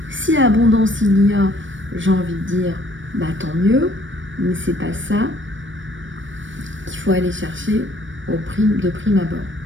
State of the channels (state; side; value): late; left; 0.56 ms